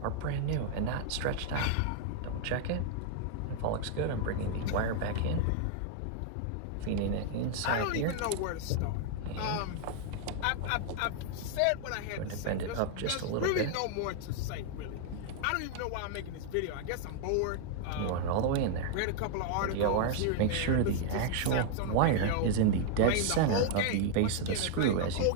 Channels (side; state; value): both; different; correlation 0.00